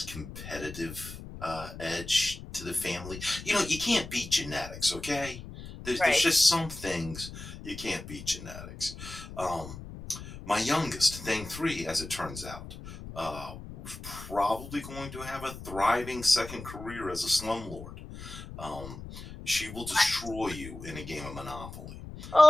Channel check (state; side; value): noise; left; rumble, 12 dB below the sound